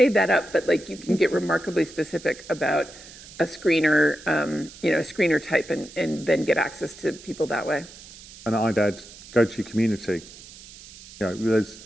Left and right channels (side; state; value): right; noise; hiss, 18 dB below the sound